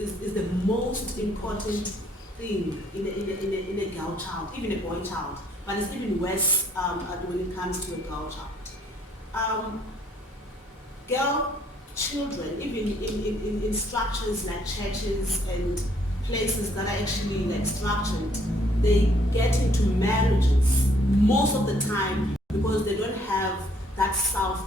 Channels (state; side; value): normal; both; correlation 0.65